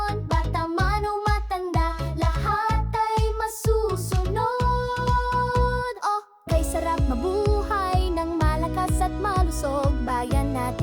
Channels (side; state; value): both; identical; correlation 1.00